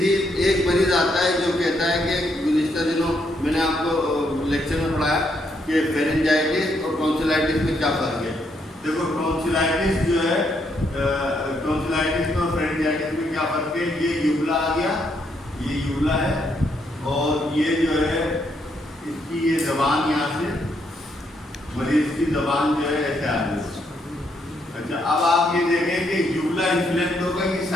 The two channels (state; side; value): normal; both; correlation 0.75